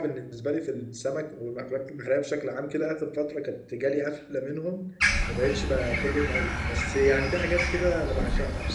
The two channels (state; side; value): identical; both; correlation 1.00